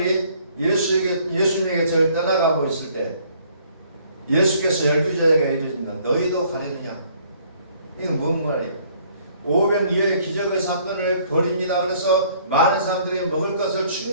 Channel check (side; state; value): both; inverted; correlation -0.61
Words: 예수님에게 떠나가고 있을 때 예수께서 12제자에게 이르신다. 너희도 가려느냐? 이건 뭔 말이에요? 500여의 기적의 사건을 벌입니다. 그래서 많은 사람들이 먹을 것을